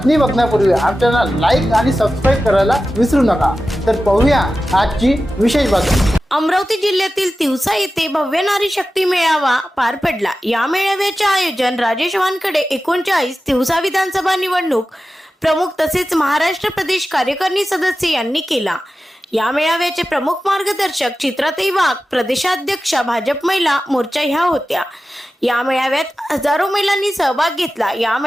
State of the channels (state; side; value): normal; both; correlation 0.94